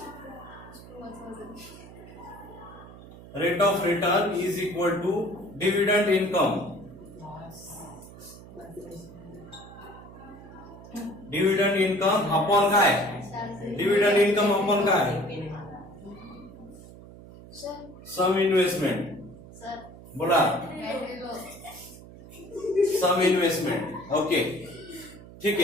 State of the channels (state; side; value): noise; right; hum, 18 dB below the sound